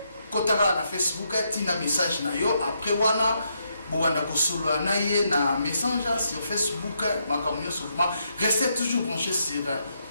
kotaka na Facebook tina message na yo après wana bowanda kosolola na ye na messenger sur Facebook makambo nyonso format restez toujours branchés sur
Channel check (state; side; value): inverted; both; correlation -0.78